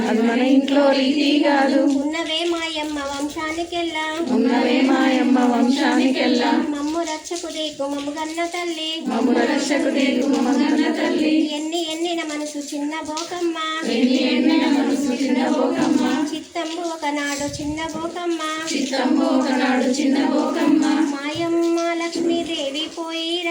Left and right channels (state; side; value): identical; both; correlation 1.00